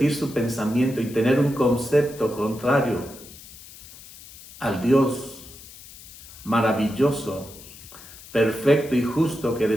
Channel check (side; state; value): left; noise; hiss, 18 dB below the sound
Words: su pensamiento y tener un concepto contrario al Dios maravilloso, perfecto y justo que